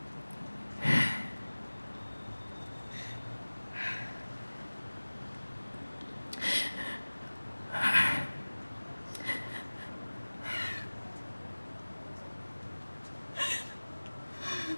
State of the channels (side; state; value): both; inverted; correlation -1.00